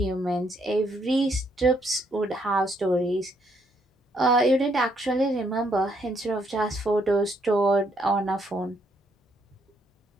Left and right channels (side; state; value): both; normal; correlation 0.72